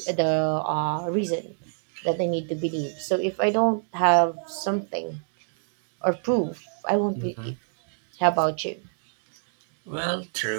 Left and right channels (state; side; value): silent; left; digital silence